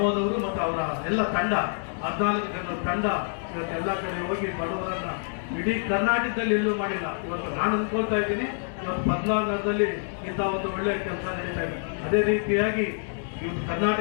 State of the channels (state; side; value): silent; right; digital silence